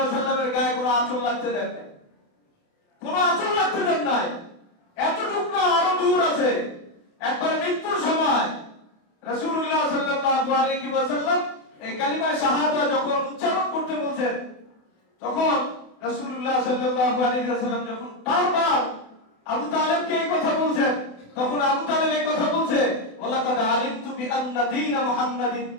গায়ে কোনো আঁচল লাগতে দেন নাই। কোনো আঁচল লাগতে দেন নাই। এতটুকু না, আরো দূর আছে। একবার মৃত্যুর সময় রাসূলুল্লাহ সাল্লাল্লাহু আলাইহি ওয়াসাল্লাম এই কালিমা শাহাদা যখন উচ্চারণ করতে বলছেন, তখন রাসূলুল্লাহ সাল্লাল্লাহু আলাইহি ওয়াসাল্লাম যখন বারবার আবু তালেবকে এই কথা বলছেন, তখন আবু তালেব এই কথা বলছে, ওয়ালাকাদ আলিমতু বিআন্না দীন মুহাম্মাদিন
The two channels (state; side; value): late; right; 28 ms